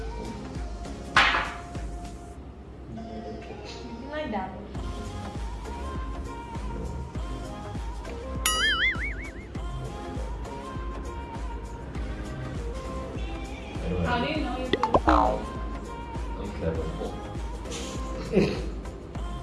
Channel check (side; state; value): both; identical; correlation 1.00